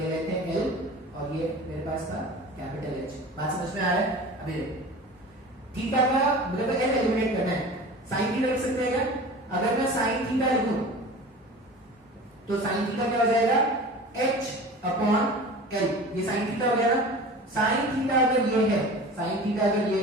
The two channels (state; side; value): normal; both; correlation 0.37